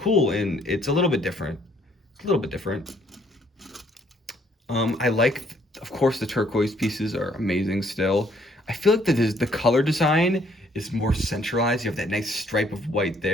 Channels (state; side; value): normal; both; correlation 0.65